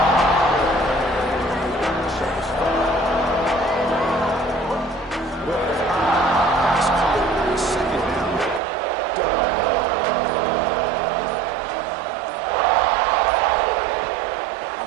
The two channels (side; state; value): left; drops out; at 8.6 s